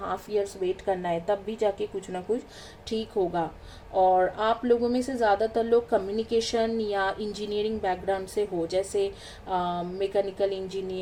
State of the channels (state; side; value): identical; both; correlation 1.00